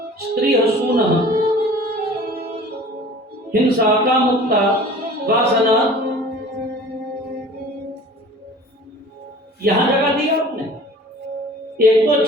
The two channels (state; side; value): normal; both; correlation 0.44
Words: स्त्री हसूना, हिंसा, कामुकता, वासना, यहां जगह दी आपने, एक तो